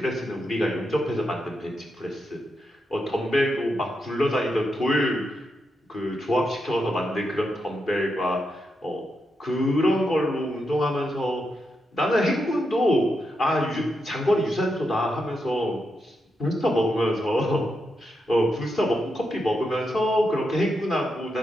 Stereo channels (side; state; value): both; normal; correlation 0.84